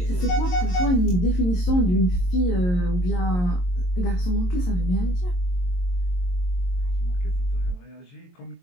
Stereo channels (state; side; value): late; right; 22 ms